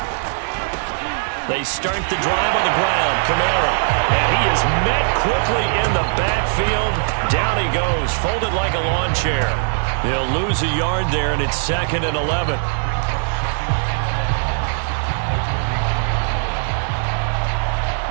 They start the drive on the ground. Kamara. And he is met quickly in the backfield. Down he goes, folded like a lawn chair. He'll lose a yard there, and it's 2nd and 11.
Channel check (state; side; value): silent; left; digital silence